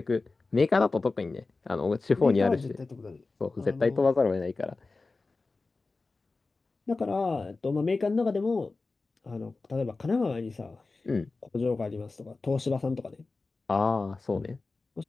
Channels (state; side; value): quieter; right; 3.7 dB